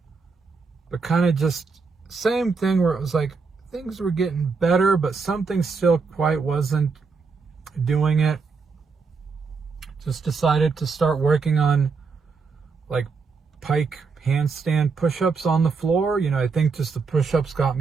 but kind of just same thing where it was like things were getting better, but something still quite wasn't doing it. Just decided to start working on like pike handstand push-ups on the floor. I think just the push-ups got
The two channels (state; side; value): quieter; left; 4.7 dB